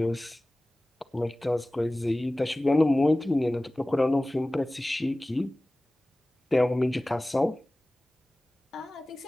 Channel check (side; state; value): both; normal; correlation 0.98